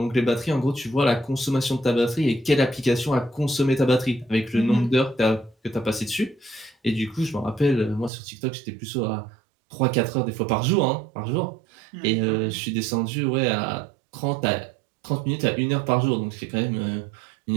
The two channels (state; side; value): drops out; left; at 8.1 s